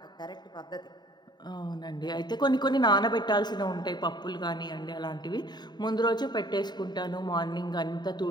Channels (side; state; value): right; late; 0.21 ms